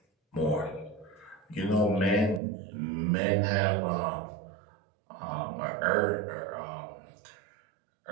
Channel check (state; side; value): drops out; left; at 2.4 s